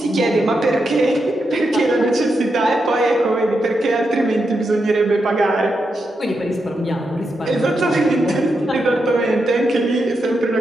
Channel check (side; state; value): both; normal; correlation 0.85